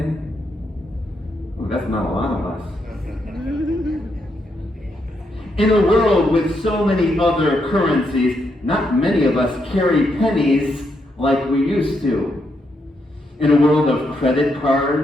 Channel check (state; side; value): normal; both; correlation 0.79